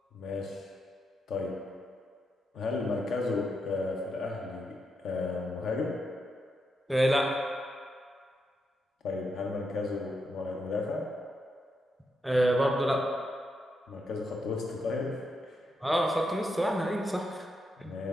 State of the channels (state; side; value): normal; both; correlation 0.82